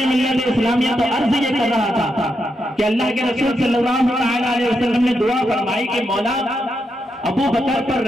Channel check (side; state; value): both; normal; correlation 0.83